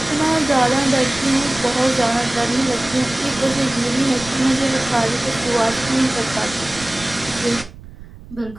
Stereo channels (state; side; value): noise; right; rumble, 17 dB below the sound